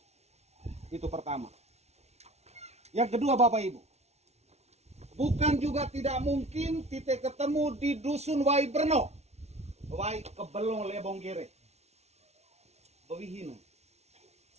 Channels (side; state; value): left; late; 0.31 ms